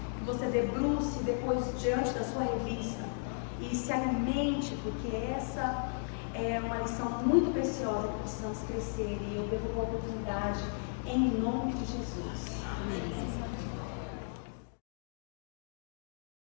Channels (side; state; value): right; silent; digital silence